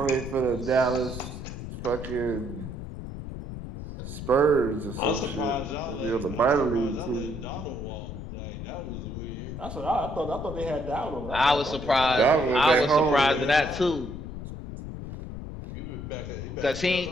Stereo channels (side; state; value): left; noise; rumble, 8 dB below the sound